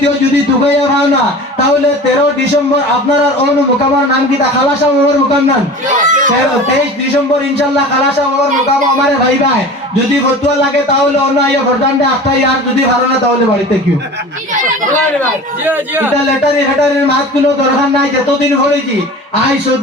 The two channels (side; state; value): both; normal; correlation 0.37